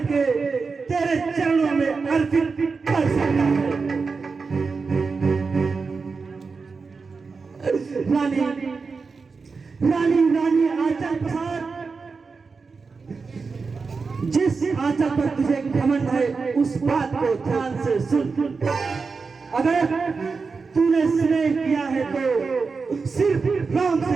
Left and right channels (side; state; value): left; quieter; 4.7 dB